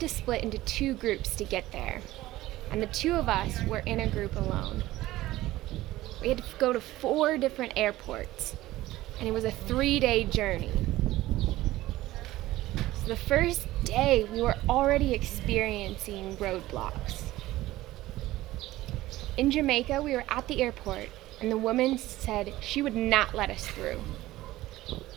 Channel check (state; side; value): quieter; left; 16.6 dB